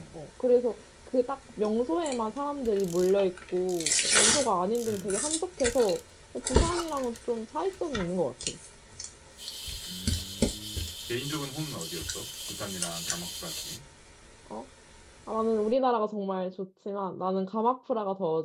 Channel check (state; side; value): identical; both; correlation 1.00